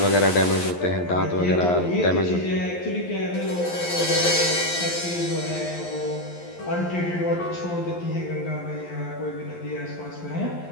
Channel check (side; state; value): right; late; 11 ms